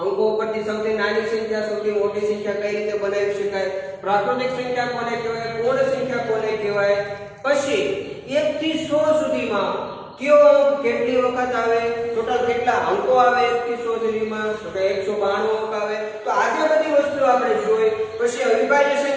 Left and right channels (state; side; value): identical; both; correlation 1.00